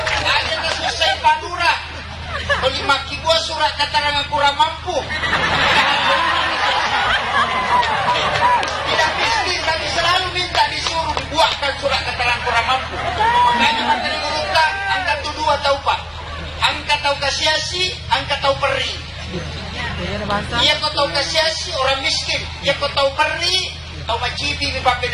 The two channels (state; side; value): identical; both; correlation 1.00